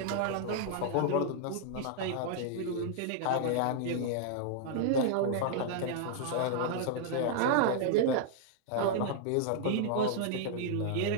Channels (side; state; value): both; different; correlation -0.01